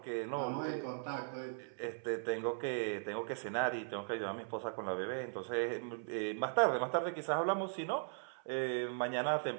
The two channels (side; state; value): left; silent; 52 dB below the other